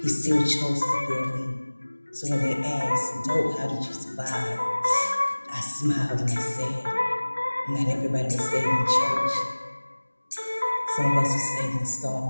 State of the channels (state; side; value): inverted; both; correlation -1.00